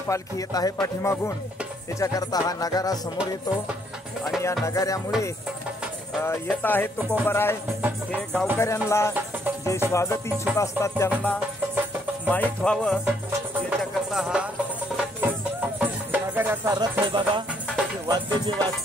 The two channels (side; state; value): both; normal; correlation 0.69